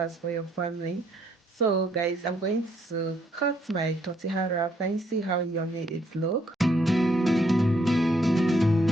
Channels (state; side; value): normal; both; correlation 0.70